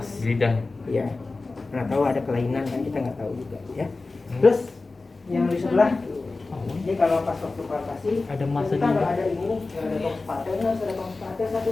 Di lidah. Iya. Nggak tahu ada kelainan kan kita nggak tahu juga ya. Terus yang di sebelah ini kalau pas waktu palpasi Ada masa kita nggak juga. ada ini nih, nggak ada tong spatel, harus ada tong satu.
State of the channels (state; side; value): quieter; right; 3.5 dB